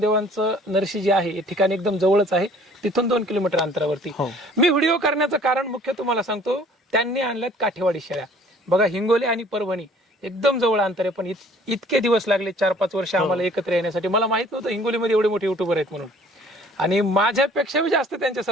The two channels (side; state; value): both; normal; correlation 0.54